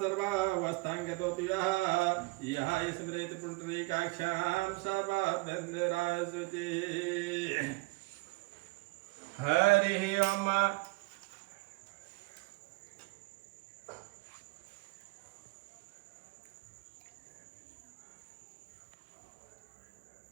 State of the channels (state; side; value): quieter; left; 24.5 dB